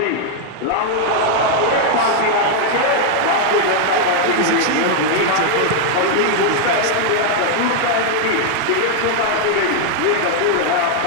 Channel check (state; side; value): different; both; correlation 0.00